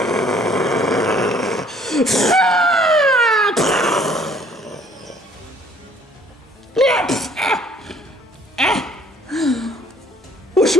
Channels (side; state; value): both; normal; correlation 0.58